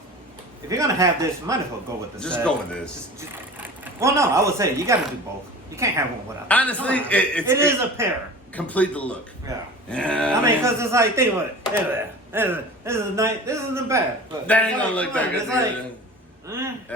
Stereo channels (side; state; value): both; normal; correlation 0.38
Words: if you're gonna have this, you might as well go with this. Just go with this. Well, no, I would say you gotta do both. You can't have one without. Honestly, it is a pair. Complete the look. Yeah. Yeah. I mean, because it's like, think about it. This is nice. This isn't bad. But That ain't it's gonna like, look come that on, good.